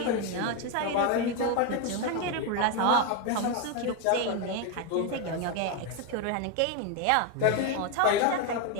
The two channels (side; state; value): both; different; correlation 0.02